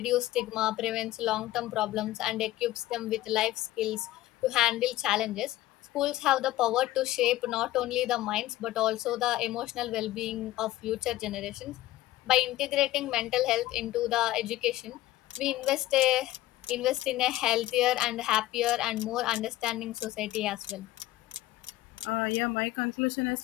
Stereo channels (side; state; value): right; quieter; 16.0 dB